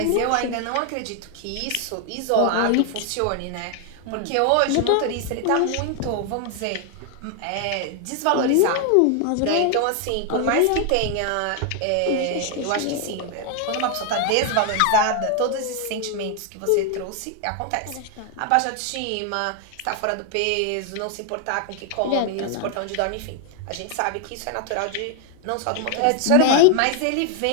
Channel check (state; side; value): different; both; correlation 0.00